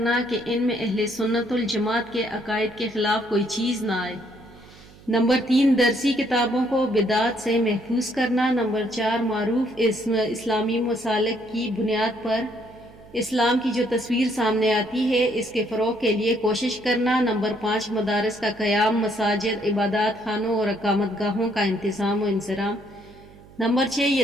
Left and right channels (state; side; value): noise; right; hum, 23 dB below the sound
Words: کہ ان میں اہل سنت الجماعت کے عقائد کے خلاف کوئی چیز نہ آئے۔ نمبر 3 درسی کتابوں کو بدعت سے محفوظ کرنا۔ نمبر 4 معروف اسلامی مسالک کی بنیاد پر اسلام کی جو تصویر سامنے آتی ہے اس کے فروغ کے لیے کوشش کرنا۔ نمبر 5 مدارس کا قیام، مساجد، عبادات خانوں اور اقامت گاہوں کا انتظام و انصرام۔ نمبر 6